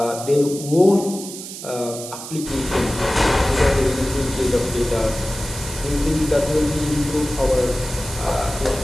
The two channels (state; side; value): noise; right; hiss, 11 dB below the sound